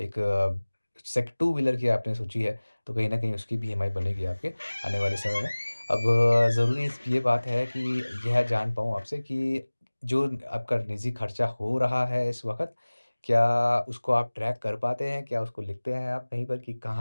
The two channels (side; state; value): both; inverted; correlation -1.00